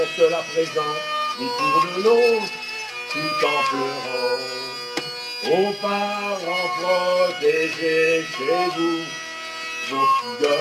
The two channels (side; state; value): both; identical; correlation 1.00